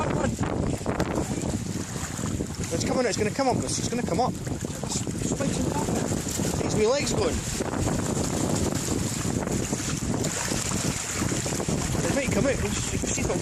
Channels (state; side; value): identical; both; correlation 1.00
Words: It's coming. It's going to come up. It's going to come up. It's my legs going. It might come out. You can see if it'll